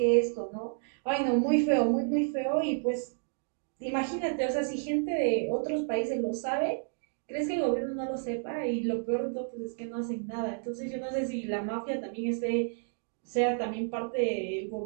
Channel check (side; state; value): left; silent; digital silence